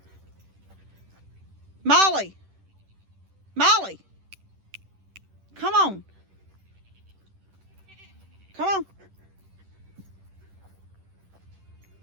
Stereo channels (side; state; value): left; late; 10 ms